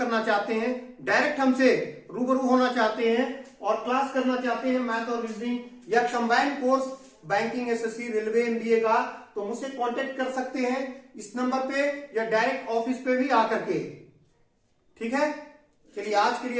चाहते हैं, डायरेक्ट हमसे रूबरू होना चाहते हैं और क्लास करना चाहते हैं मैथ और रीजनिंग या combined course banking, SSC, railway, MBA का, तो मुझसे कांटेक्ट कर सकते हैं इस नंबर पे या डायरेक्ट ऑफिस पे भी आकर के। ठीक है, चलिए आज के लिए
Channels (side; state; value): both; identical; correlation 1.00